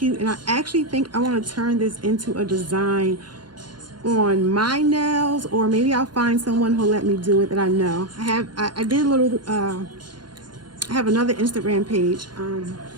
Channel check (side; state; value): left; late; 0.71 ms